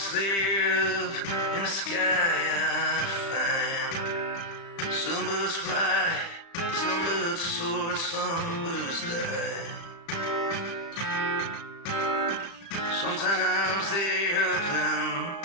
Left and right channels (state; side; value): late; right; 35 ms